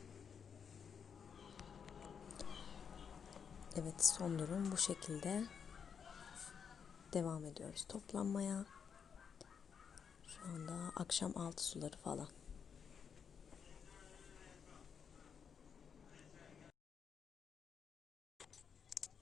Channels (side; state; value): right; quieter; 6.9 dB